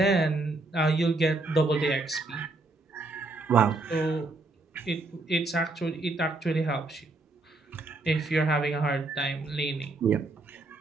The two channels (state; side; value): quieter; left; 3.2 dB